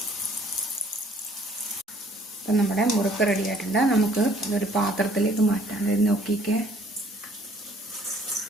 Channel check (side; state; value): both; normal; correlation 0.59